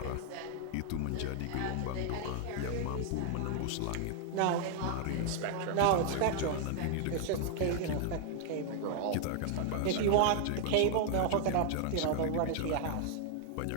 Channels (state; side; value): different; both; correlation 0.00